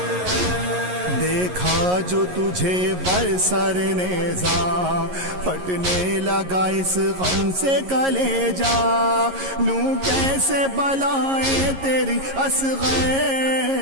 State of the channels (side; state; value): left; late; 11 ms